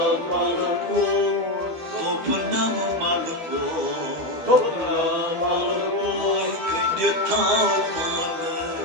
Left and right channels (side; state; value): left; late; 12 ms